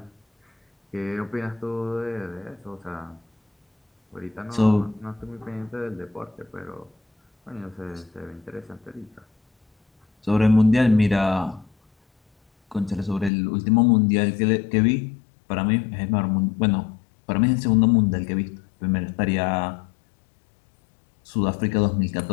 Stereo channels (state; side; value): drops out; right; at 13.3 s